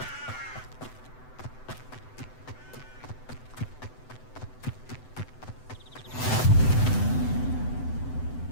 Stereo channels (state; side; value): late; right; 7.9 ms